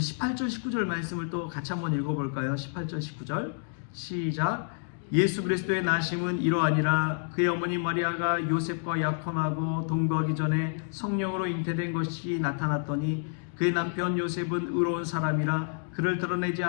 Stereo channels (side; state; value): right; silent; digital silence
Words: 18절 19절 말씀을 또 같이 한번 읽어볼까요? 18절 19절 시작. 예수 그리스도의 나심은 이러하니라. 그의 어머니 마리아가 요셉과 약혼하고 동거하기 전에 성령으로 잉태된 것이 나타났더니 그의 남편 요셉은 의로운 사람이라 그를 드러내지